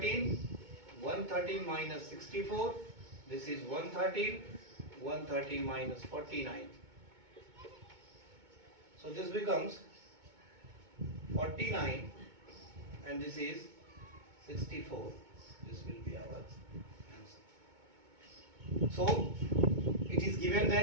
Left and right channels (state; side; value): late; left; 2.2 ms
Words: minus 64, this is 113 minus 49. So this becomes 49 and this is 64. This will be our answer. So it is given